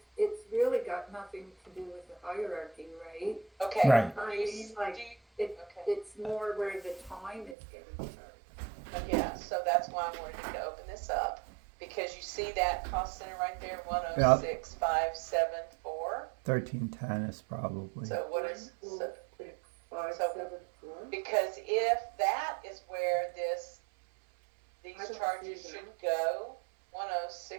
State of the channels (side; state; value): left; drops out; at 7.6 s